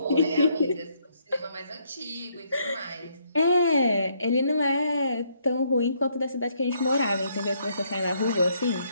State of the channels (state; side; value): inverted; both; correlation -0.71